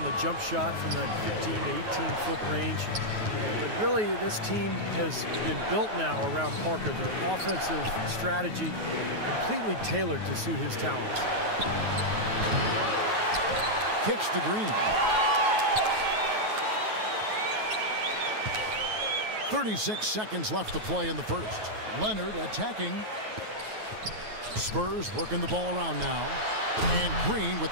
the jump shot from that 15 to 18-foot range. But really, this team has been built now around Parker. Their offensive strategy completely tailored to suit his talents. Kicks to Green. 36 seconds left to play in the first. Leonard attacking. Spurs working the ball around now. And Green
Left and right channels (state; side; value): late; left; 9.3 ms